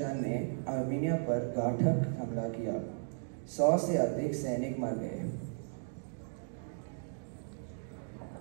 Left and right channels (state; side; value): silent; left; digital silence